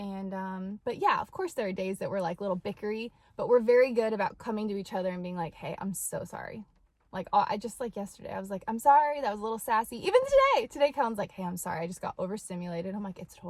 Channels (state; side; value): identical; both; correlation 1.00